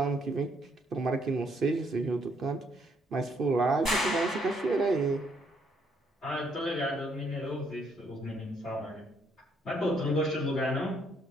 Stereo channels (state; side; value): normal; both; correlation 0.70